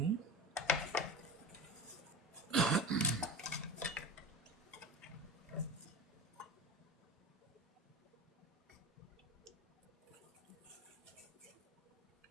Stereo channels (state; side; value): normal; both; correlation 0.30